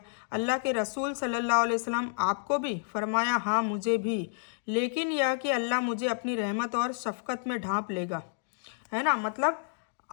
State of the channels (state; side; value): silent; right; digital silence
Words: अल्लाह के रसूल सल्लल्लाहु अलैहि वसल्लम आपको भी? फरमाया हाँ मुझे भी, लेकिन यह कि अल्लाह मुझे अपनी रहमत और शफकत में ढांप लेगा, है ना। मतलब